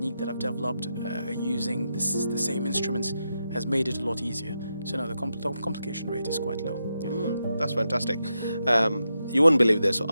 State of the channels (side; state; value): both; inverted; correlation -0.86